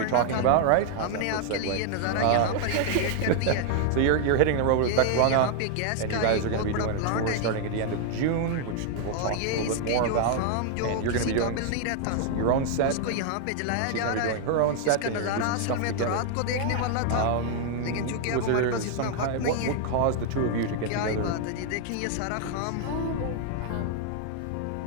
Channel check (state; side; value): different; both; correlation 0.00